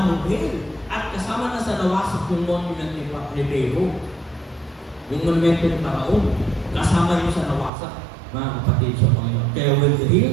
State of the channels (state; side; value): drops out; left; at 7.7 s